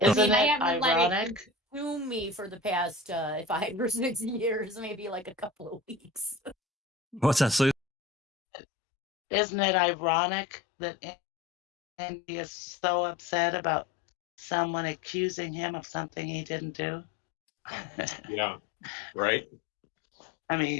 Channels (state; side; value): drops out; right; at 7.8 s